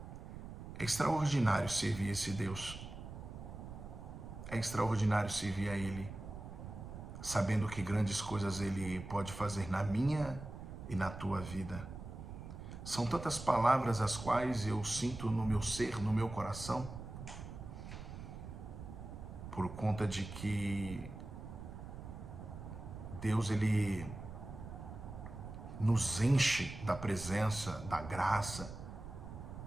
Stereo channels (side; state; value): right; noise; rumble, 10 dB below the sound